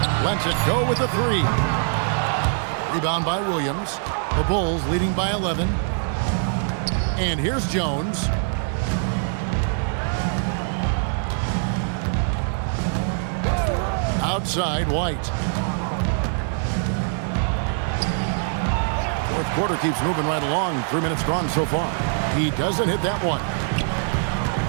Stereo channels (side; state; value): left; silent; digital silence